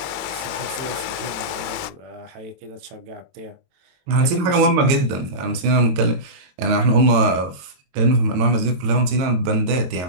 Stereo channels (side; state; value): left; late; 22 ms